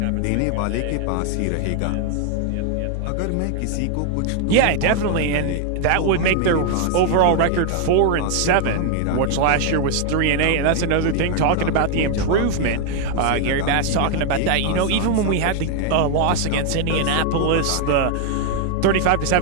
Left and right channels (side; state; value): both; different; correlation 0.00